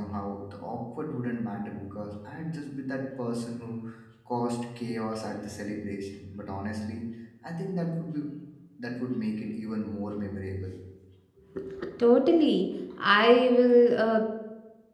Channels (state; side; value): identical; both; correlation 1.00